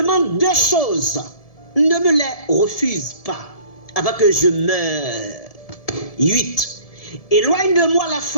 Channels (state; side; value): late; right; 1.7 ms